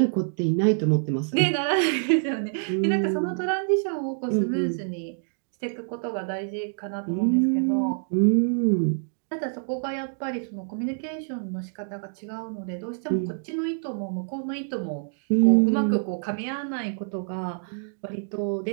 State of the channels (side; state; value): left; silent; digital silence